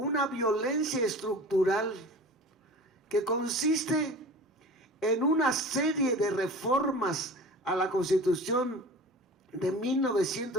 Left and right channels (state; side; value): normal; both; correlation 0.38